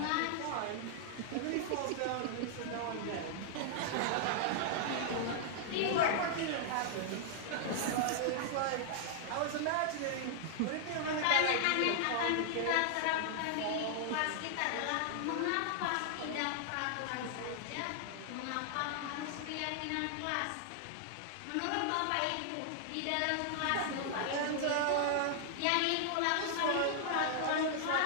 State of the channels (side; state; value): both; different; correlation -0.01